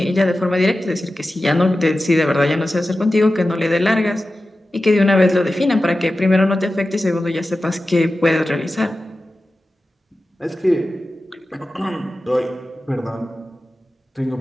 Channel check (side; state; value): both; normal; correlation 0.94